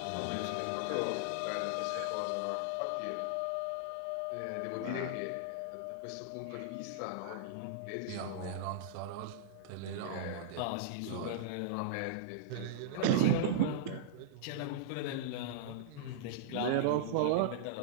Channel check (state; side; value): different; both; correlation -0.02